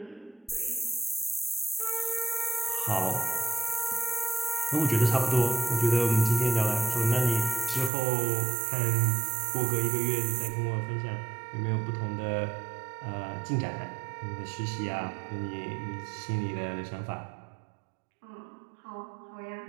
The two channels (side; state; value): left; drops out; at 7.9 s